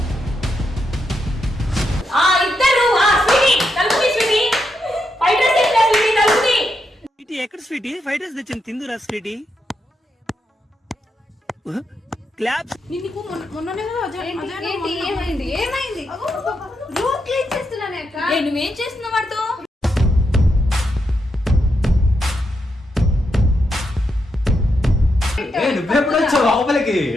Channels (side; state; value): both; normal; correlation 0.82